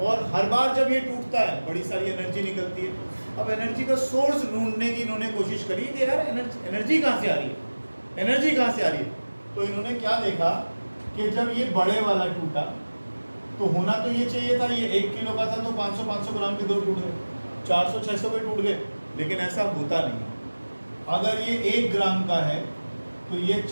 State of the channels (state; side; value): inverted; both; correlation -1.00